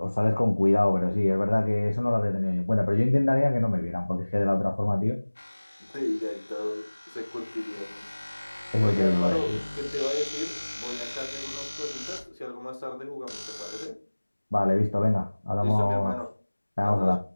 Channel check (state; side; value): inverted; both; correlation -1.00